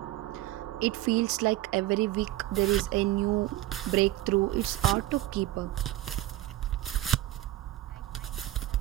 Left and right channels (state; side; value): quieter; left; 15.6 dB